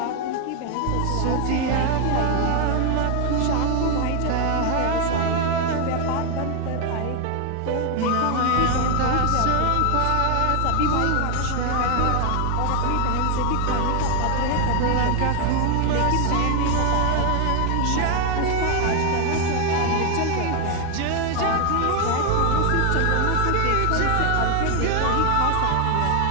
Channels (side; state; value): both; different; correlation 0.01